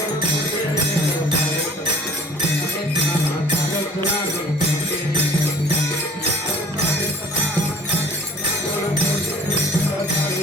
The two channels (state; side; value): normal; both; correlation 0.50